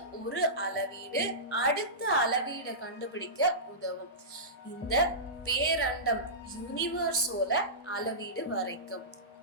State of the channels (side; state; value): both; normal; correlation -0.18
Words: ஒரு அளவீடு அடுத்த அளவீடை கண்டுபிடிக்க உதவும். இந்த பேரண்டம் யூனிவர்ஸோட அளவீடு வரைக்கும்.